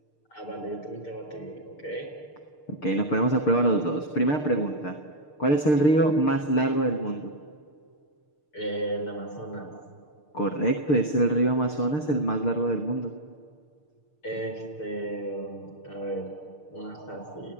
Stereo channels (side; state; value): right; late; 6.6 ms